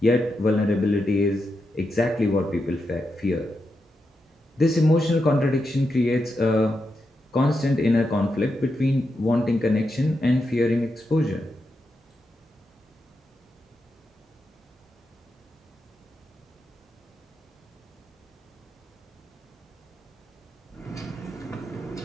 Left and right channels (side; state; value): both; normal; correlation 0.86